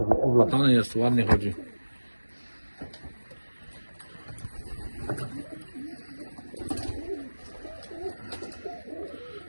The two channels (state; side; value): inverted; both; correlation -1.00